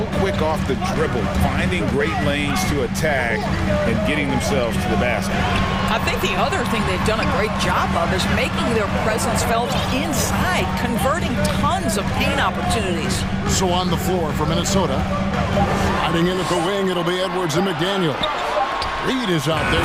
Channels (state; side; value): identical; both; correlation 1.00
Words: quick off the dribble, finding great lanes to attack and getting themselves to the basket. I think the other thing they've done a great job of is making their presence felt inside, converting tons of paint opportunities. So on the floor for Minnesota, hiding in at the wing, it'll be Edwards and McDaniel. Reed is out there